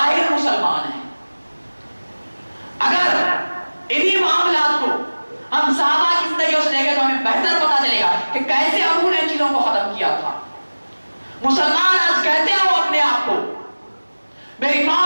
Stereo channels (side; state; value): both; inverted; correlation -1.00